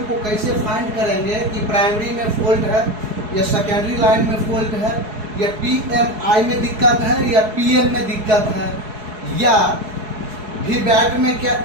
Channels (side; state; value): left; late; 4.7 ms